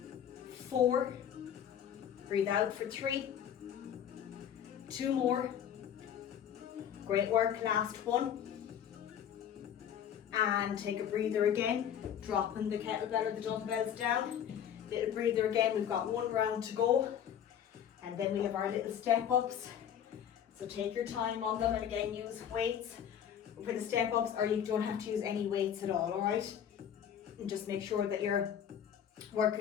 4. Breathe out for 3. 2 more. Great work. Last one. And take a breather again. Dropping the kettlebell or the dumbbells down. Little breather again. We've got 1 round to go. And then we have our little step ups. So take your time on them, and again use weights for the step ups, or you don't have to use any weights at all, alright? And just make sure that you're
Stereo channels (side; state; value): right; quieter; 9.2 dB